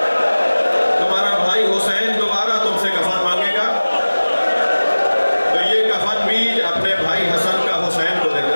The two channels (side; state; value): both; inverted; correlation -1.00